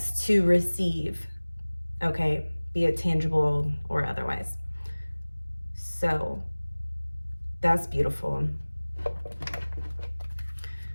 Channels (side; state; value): both; inverted; correlation -1.00